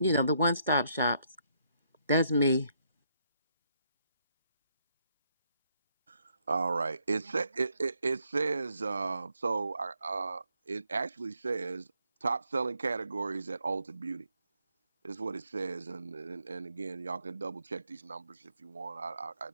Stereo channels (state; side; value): inverted; both; correlation -0.75